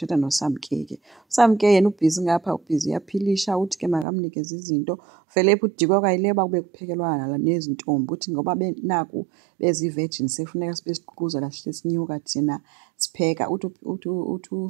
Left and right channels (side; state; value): left; drops out; at 4.0 s